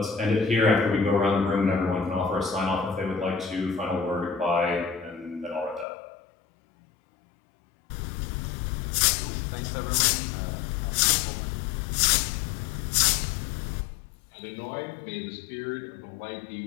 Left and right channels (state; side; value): drops out; right; at 5.9 s